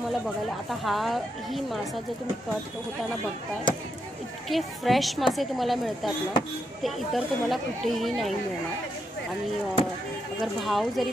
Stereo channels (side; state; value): both; normal; correlation 0.81